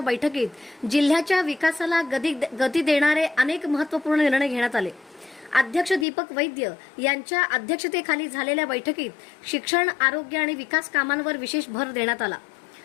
जिल्ह्याच्या विकासाला गती देणारे अनेक महत्त्वपूर्ण निर्णय घेण्यात आले। अध्यक्ष दीपक वैद्य यांच्या अध्यक्षतेखाली झालेल्या बैठकीत शिक्षण, आरोग्य आणि विकास कामांवर विशेष भर देण्यात आला।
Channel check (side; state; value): right; drops out; at 6.1 s